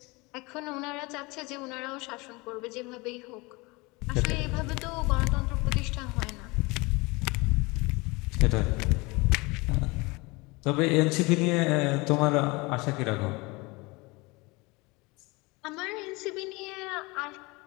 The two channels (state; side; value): quieter; right; 25.2 dB